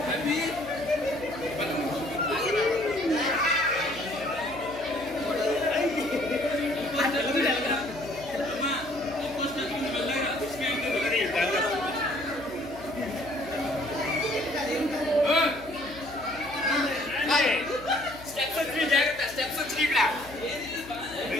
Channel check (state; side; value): noise; left; hum, 18 dB below the sound